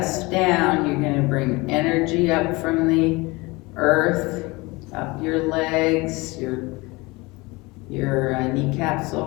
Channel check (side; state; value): right; quieter; 23.9 dB